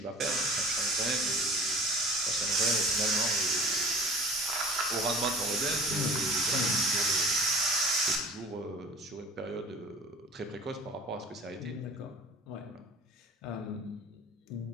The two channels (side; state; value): both; normal; correlation 0.44